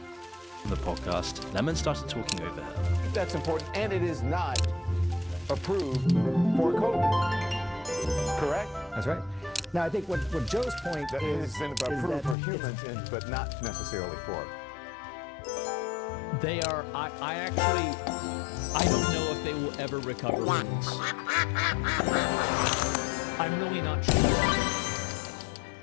On the podcast, Lemon started talking over her. That's important, and it is not approved for COVID. Correct? That's right. Now, I think what Joe's point That is... has been is approved that for it's- humans, but not necessarily for. They are. I don't know if they will ever recover from this. I'm really not sure.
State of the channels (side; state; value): right; drops out; at 12.4 s